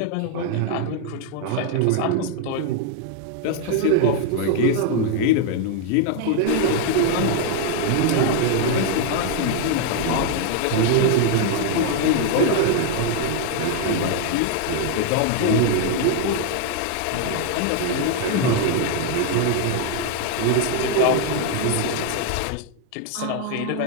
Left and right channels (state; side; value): different; both; correlation 0.00